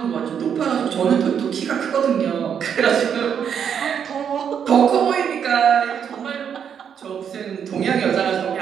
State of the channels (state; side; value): quieter; left; 7.9 dB